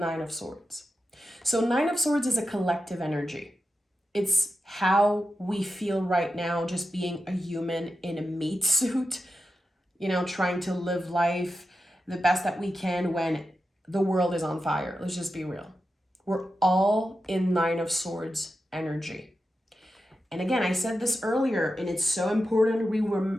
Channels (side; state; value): both; normal; correlation 0.90